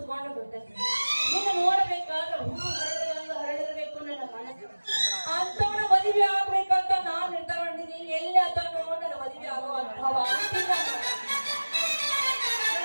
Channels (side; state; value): both; inverted; correlation -1.00